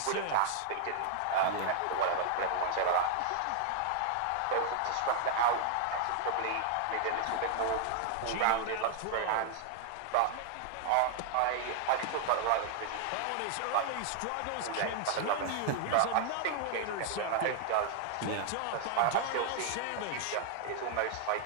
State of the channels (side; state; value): both; different; correlation 0.00